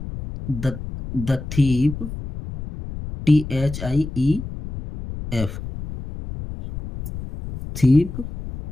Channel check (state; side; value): noise; left; rumble, 9 dB below the sound